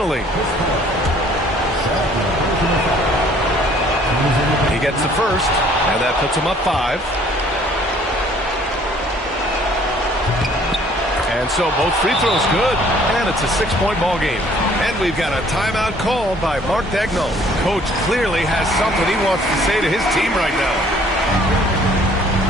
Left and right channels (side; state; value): both; normal; correlation 0.58